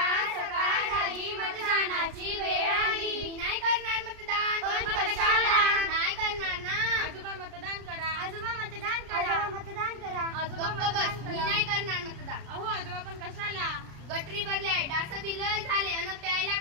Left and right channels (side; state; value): left; late; 33 ms